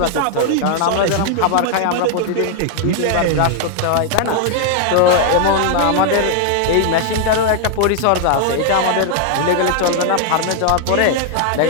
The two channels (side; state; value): both; different; correlation 0.00